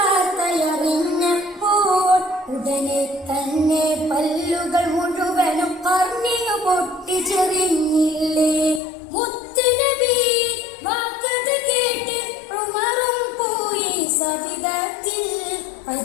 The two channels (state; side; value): drops out; right; at 8.8 s